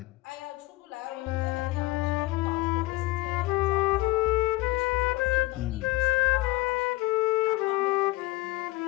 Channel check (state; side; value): quieter; right; 19.8 dB